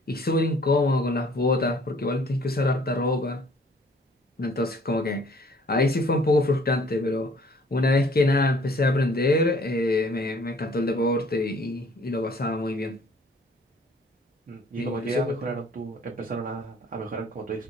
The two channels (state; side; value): normal; both; correlation 0.57